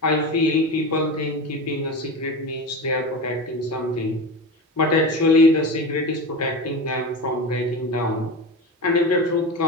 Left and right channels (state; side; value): normal; both; correlation 0.25